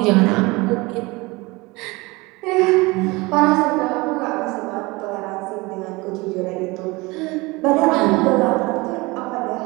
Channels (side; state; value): left; quieter; 23.6 dB